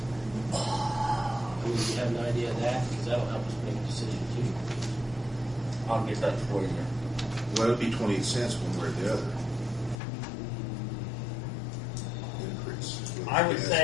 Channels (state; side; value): drops out; right; at 10.0 s